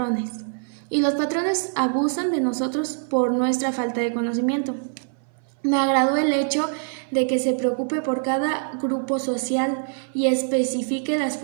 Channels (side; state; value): left; silent; 59 dB below the other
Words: y los patrones abusan de nosotros por nuestra falta de conocimiento. Me agradó el hecho de que se preocupe por cada grupo social y especifique las